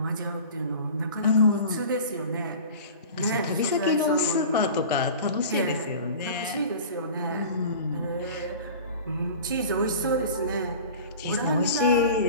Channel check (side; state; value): both; inverted; correlation -0.38